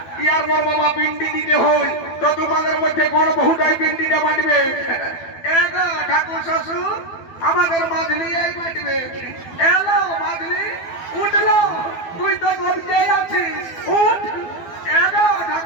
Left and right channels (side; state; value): right; late; 12 ms